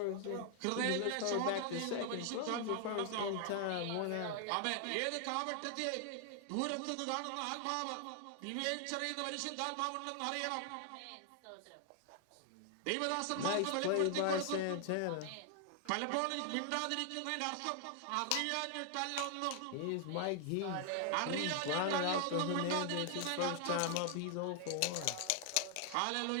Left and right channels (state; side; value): different; both; correlation 0.00